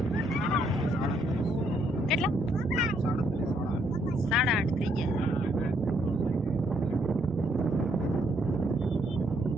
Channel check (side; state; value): both; normal; correlation 0.71